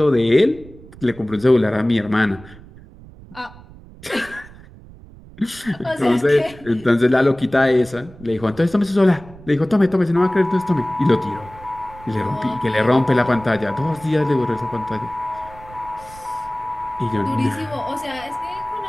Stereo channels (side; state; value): right; noise; rumble, 20 dB below the sound